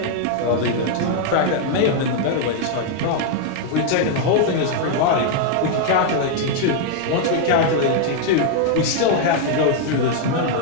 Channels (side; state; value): both; different; correlation 0.00